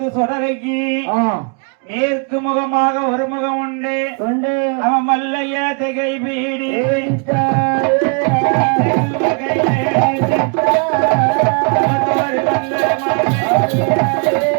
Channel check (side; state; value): left; quieter; 36.9 dB